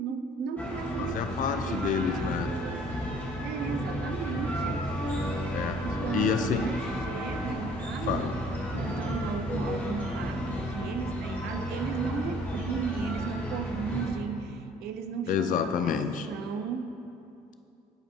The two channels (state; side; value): normal; both; correlation 0.55